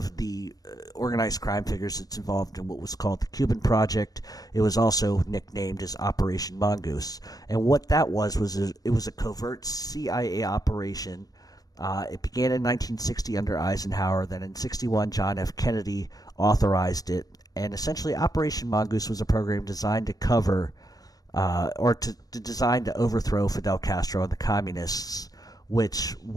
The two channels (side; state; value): right; late; 0.18 ms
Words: the organized crime figures that's involved in what was called the Cuban Project. It was also nicknamed as Operation Mongoose. And what that was it was a covert CIA operation. It began in 1960 under Eisenhower. Then in 61, John F. Kennedy authorized it. And essentially, Operation Mongoose was a program designed to cover, designed to overthrow Fidel Castro and the communists, which